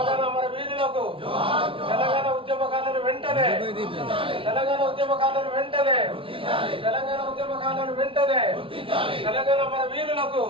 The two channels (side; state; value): left; late; 0.26 ms